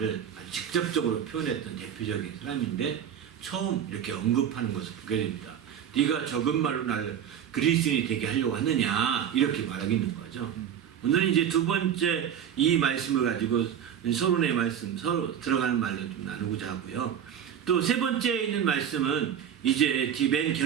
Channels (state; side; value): quieter; left; 9.1 dB